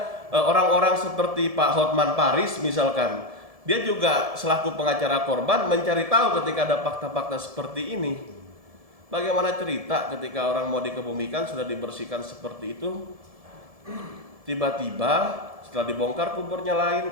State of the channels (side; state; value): left; late; 1.7 ms